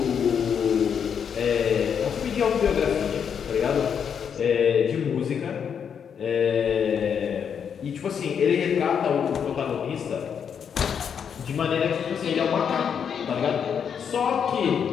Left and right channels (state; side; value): quieter; right; 7.5 dB